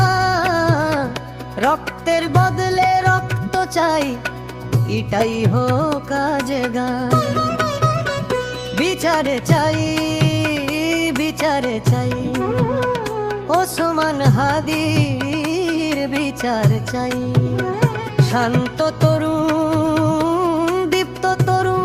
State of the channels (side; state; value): both; identical; correlation 1.00